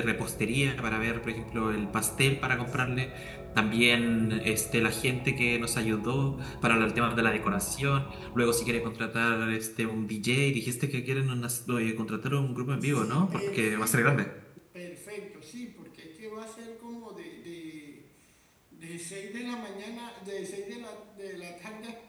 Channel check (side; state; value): both; identical; correlation 1.00